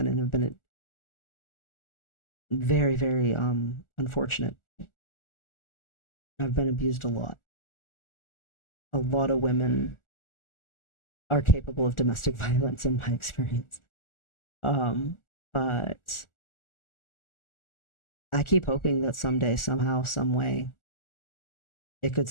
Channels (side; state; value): right; late; 1.4 ms